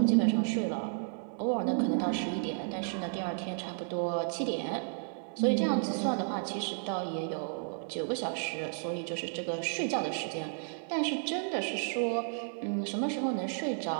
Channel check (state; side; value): silent; left; 56 dB below the other